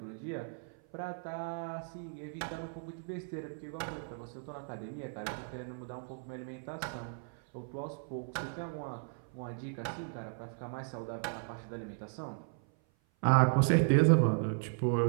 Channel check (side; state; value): left; silent; 54 dB below the other